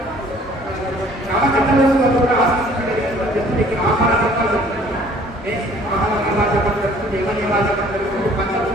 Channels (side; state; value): both; normal; correlation 0.55